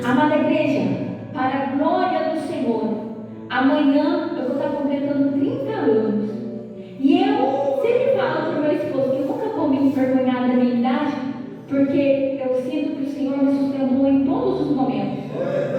Amada igreja, para a glória do Senhor, amanhã eu vou estar completando 30 anos. E eu sempre falo para o meu esposo que eu nunca vou me envergonhar da minha idade, porque eu sinto que o Senhor me sustentou em todos os momentos.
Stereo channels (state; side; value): identical; both; correlation 1.00